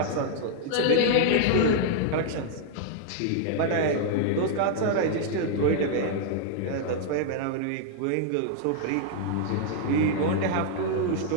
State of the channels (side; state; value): both; different; correlation 0.00